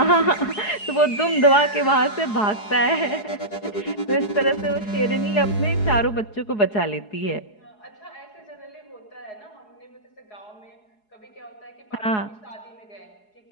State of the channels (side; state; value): right; late; 4.7 ms